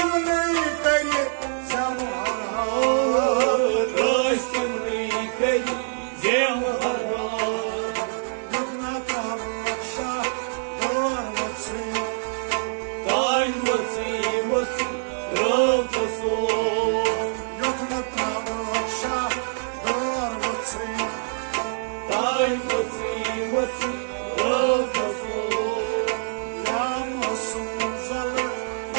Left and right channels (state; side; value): silent; left; digital silence